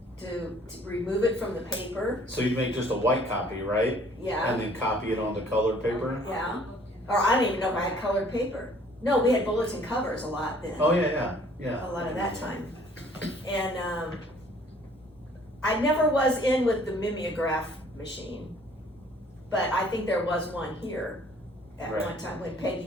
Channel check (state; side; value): normal; both; correlation 0.57